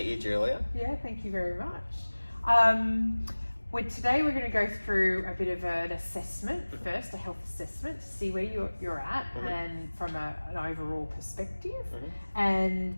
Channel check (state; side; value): inverted; both; correlation -1.00